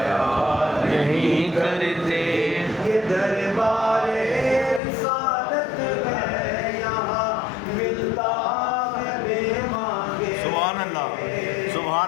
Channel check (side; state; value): right; drops out; at 4.8 s